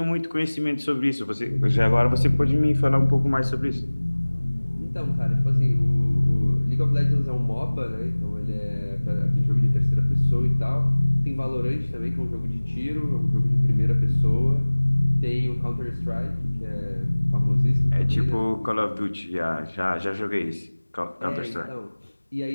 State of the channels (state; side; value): inverted; both; correlation -1.00